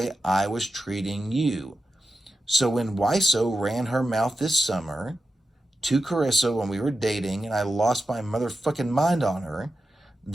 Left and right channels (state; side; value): normal; both; correlation 0.91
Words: I was treating you. So when Wiso ran her mouth this summer to Carissa when we were dating and I lost my motherfucking mind on her,